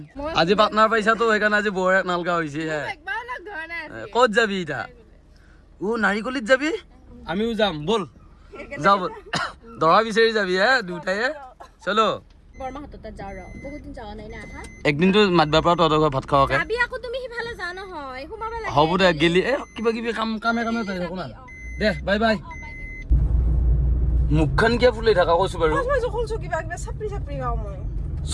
আজি পাৰ্টনাৰ পাইছাতো সেইকাৰণে আজি বৰ এক নালগা হৈছে ক'ত যাবি এতিয়া নাৰিকলীত যাবি আমিও যাম ব'ল যাওঁ ব'ল দৰা বিচাৰি যাবি হে দুটায়ে চলো একদিনটো মাতবা পৰা তহঁতৰ ঘৰত ভাত খাওঁকে হ'ব দে গেলি কিবা কিবি কামে চাই থাকো না দে বাই বাই মুখখন কিয় ফুলি থাকা কৈছো বাৰু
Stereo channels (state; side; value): identical; both; correlation 1.00